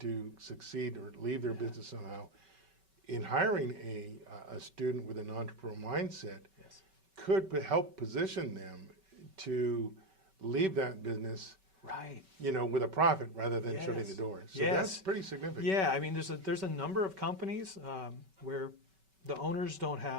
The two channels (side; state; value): left; late; 5.2 ms